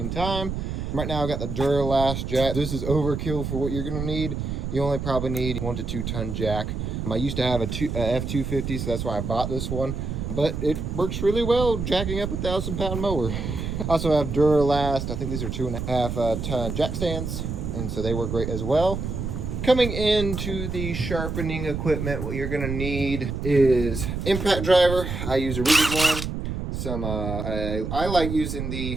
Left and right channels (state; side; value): noise; right; rumble, 4 dB below the sound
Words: time. Right now I got the Duralast jack. This is overkill for what you're gonna need. You only probably need 1 to 2 ton jack. I used to have a F250, so that's why I bought this one. But it works really well jacking up a 1,000-pound mower. I also have Duralast, I think these are 2.5 ton jack stands, and so they work great as well. Coming into the sharpening equipment, what you're gonna need is impact driver. I use a rigid one. I like using